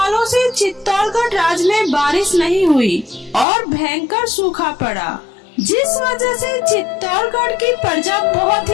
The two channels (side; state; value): right; drops out; at 3.5 s